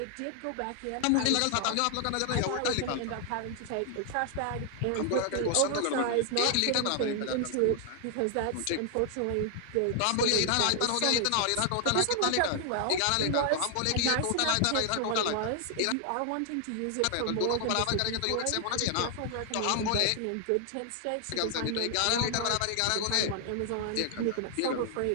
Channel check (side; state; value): both; different; correlation 0.00